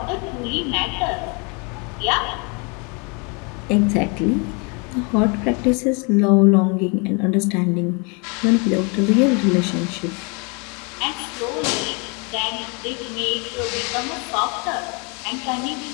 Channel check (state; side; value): quieter; right; 32.5 dB